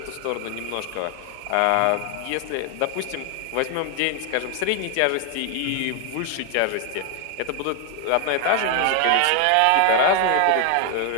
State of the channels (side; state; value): both; different; correlation 0.00